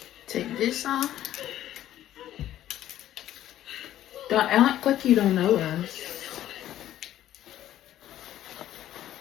Take this off. Don't act like you don't know us.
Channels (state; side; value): quieter; right; 12.6 dB